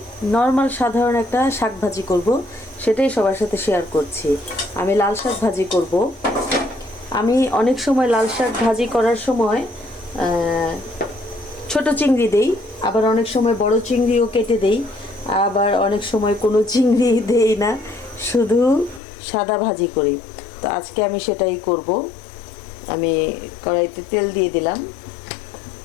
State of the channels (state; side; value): drops out; right; at 19.0 s